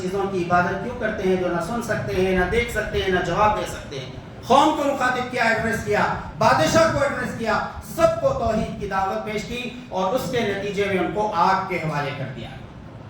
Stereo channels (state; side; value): identical; both; correlation 1.00